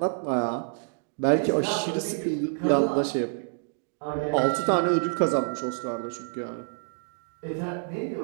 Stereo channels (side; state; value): left; silent; digital silence